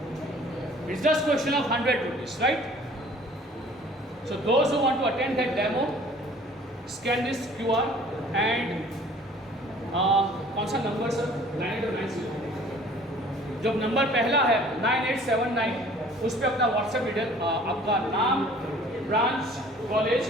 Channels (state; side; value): normal; both; correlation 0.51